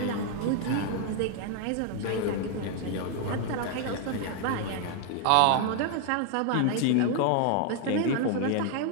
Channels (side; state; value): both; different; correlation 0.00